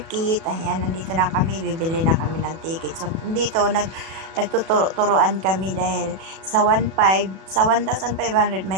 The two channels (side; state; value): left; late; 37 ms